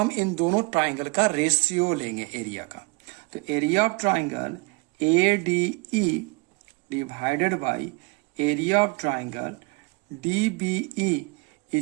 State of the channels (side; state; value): left; quieter; 28.0 dB